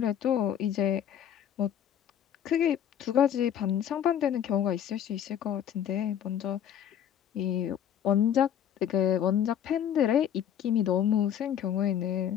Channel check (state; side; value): quieter; right; 9.6 dB